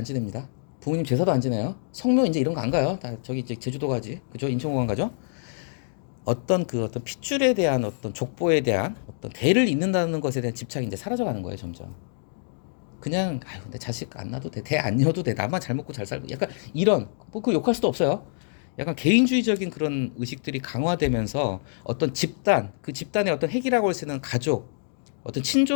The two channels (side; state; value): right; silent; digital silence